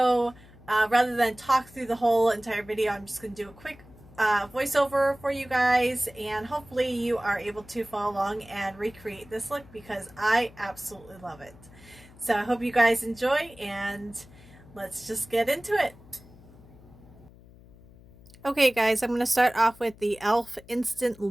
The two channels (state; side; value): noise; left; hum, 23 dB below the sound